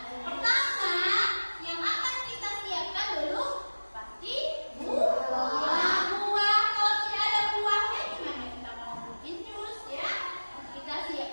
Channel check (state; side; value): inverted; both; correlation -1.00